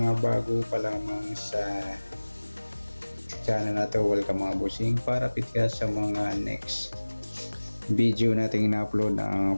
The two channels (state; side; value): inverted; both; correlation -1.00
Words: bago pa lamang sa channel na to. Welcome mga busing. Para pitka sa mga next video nating ina-upload,